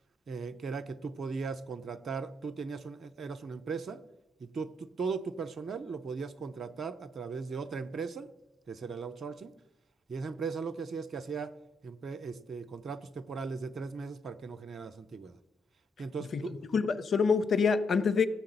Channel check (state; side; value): normal; both; correlation 0.75